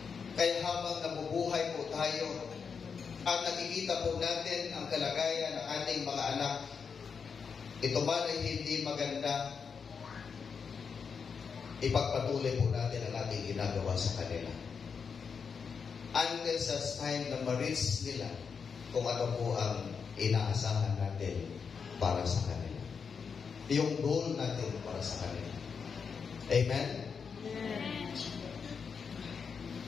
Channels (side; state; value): right; quieter; 6.0 dB